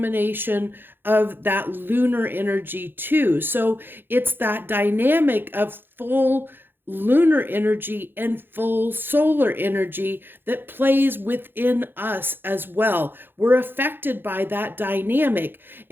of that lunar energy too. So it's that dynamic of full lunar energy and full solar energy that plays within us as well. We're affected by that dynamic.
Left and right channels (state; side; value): late; left; 0.10 ms